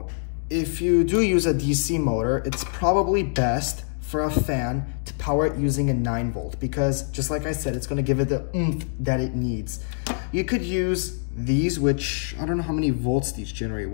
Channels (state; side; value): silent; right; digital silence